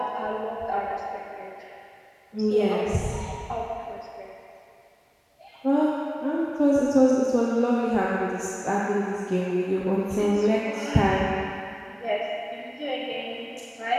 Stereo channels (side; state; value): both; identical; correlation 1.00